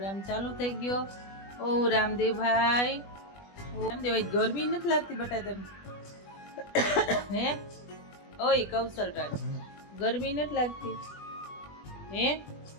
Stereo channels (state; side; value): late; right; 20 ms